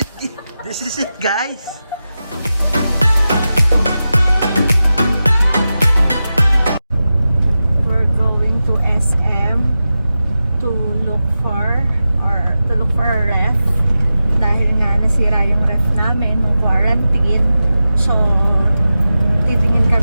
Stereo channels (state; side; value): inverted; both; correlation -0.93